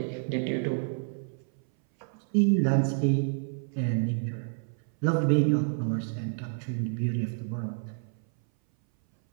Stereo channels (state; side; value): silent; left; 59 dB below the other